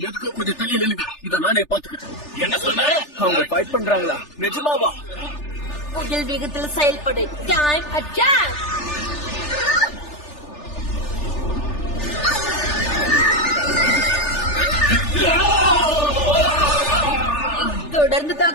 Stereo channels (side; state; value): right; late; 3.4 ms